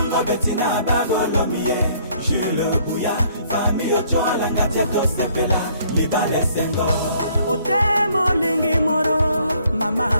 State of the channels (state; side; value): inverted; both; correlation -0.63